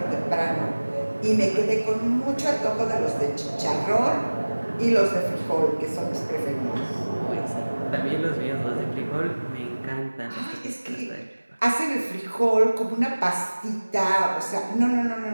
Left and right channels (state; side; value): inverted; both; correlation -1.00